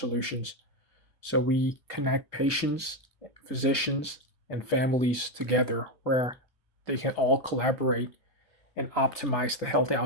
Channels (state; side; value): normal; both; correlation 0.08